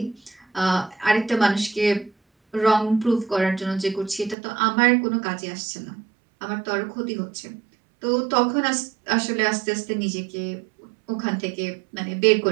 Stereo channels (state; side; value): drops out; left; at 4.4 s